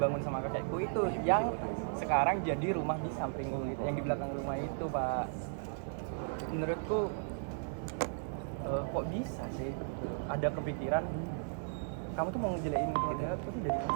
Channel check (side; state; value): left; silent; digital silence